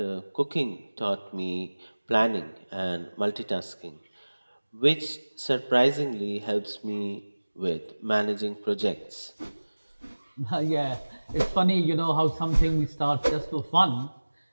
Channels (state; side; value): inverted; both; correlation -1.00